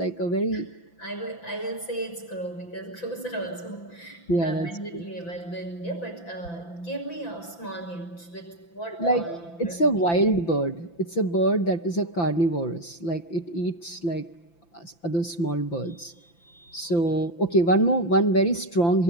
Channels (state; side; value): late; right; 5.9 ms